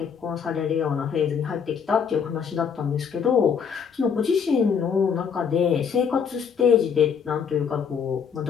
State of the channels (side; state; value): right; quieter; 6.8 dB